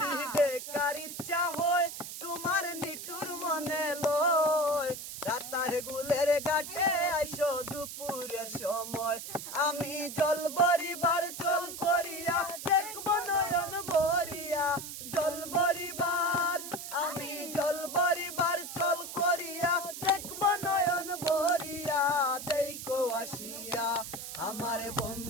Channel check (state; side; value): noise; right; hiss, 9 dB below the sound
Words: দেখার ইচ্ছা হয় তোমার নিঠুর মনে লয় রাতার গুলের ঘাটে আইসো দুপুরের সময় আমি জল ভরিবার চল করিয়া দেখবো নয়ন ভরিয়া জল ভরিবার আমি জল ভরিবার চল করিয়া দেখবো নয়ন ভরিয়া দেখো আসিয়া আমার